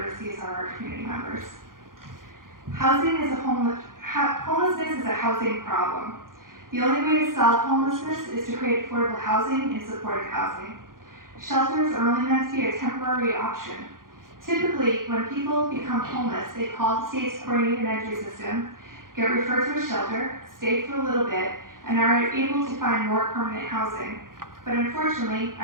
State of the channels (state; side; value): late; left; 0.91 ms